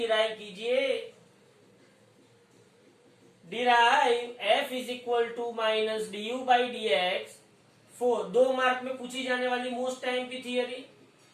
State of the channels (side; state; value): both; identical; correlation 1.00